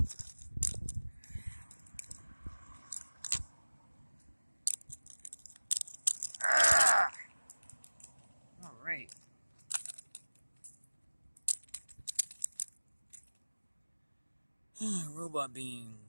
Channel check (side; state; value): both; inverted; correlation -1.00